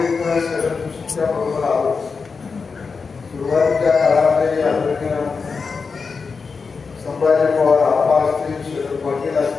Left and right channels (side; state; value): right; quieter; 5.0 dB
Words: शरदच्या बरोबर आलो, सुरुवातीच्या काळामध्ये आदरणीय संभाजी पवार आप्पा असतील, शरद पाटील